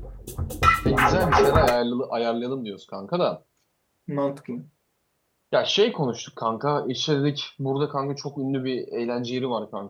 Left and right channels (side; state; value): both; identical; correlation 1.00